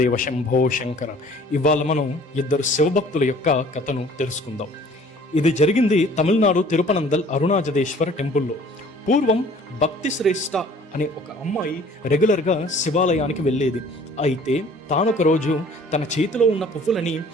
శంభో శంకర. ఇవాళ మనం ఇద్దరు శివభక్తుల యొక్క కథను తెలుసుకుందాం. ఇది జరిగింది తమిళనాడు తిరుపనందల్ అరుణాచలేశ్వర టెంపుల్లో. పూర్వం భక్తి శ్రేష్ఠ అనే ఒక అమ్మాయి రెగ్యులర్గా శివాలయానికి వెళ్ళేది. అయితే తానొక రోజు తన చేతిలో ఉన్న పువ్వులని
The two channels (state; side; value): normal; both; correlation 0.52